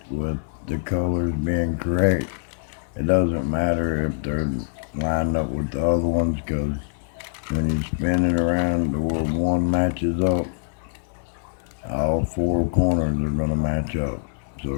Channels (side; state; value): right; silent; digital silence